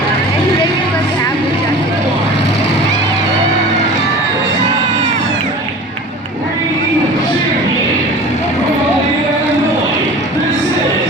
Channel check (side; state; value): both; normal; correlation 0.39